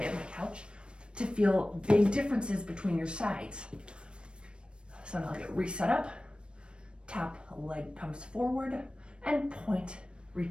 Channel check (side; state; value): left; late; 0.056 ms